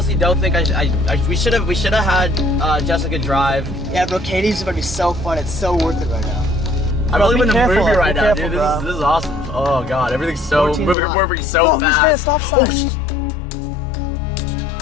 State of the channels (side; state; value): right; drops out; at 11.0 s